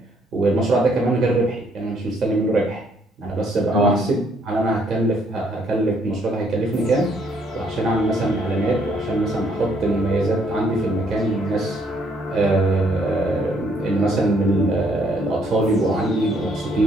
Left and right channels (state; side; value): normal; both; correlation 0.68